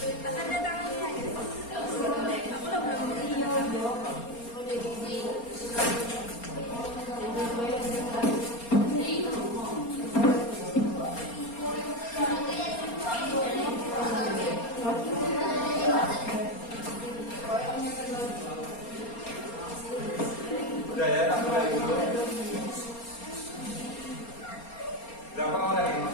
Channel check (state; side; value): late; right; 4.3 ms